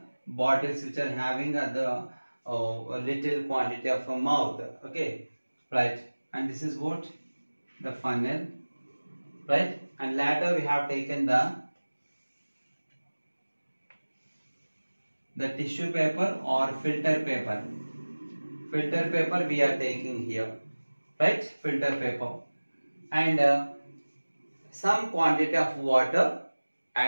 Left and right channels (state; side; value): inverted; both; correlation -1.00